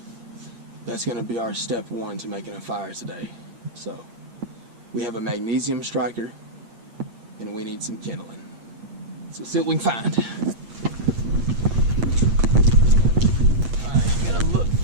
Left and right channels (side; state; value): left; late; 8.6 ms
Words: That's gonna be our step one to making a fire today. So we have a magnesium striker and we need some kindling. So see what we can find. All right, I'm gonna look